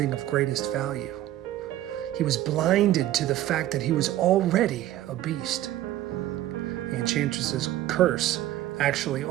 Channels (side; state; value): left; quieter; 13.9 dB